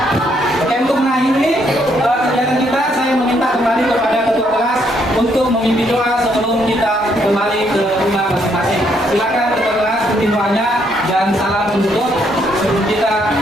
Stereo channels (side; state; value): both; normal; correlation 0.72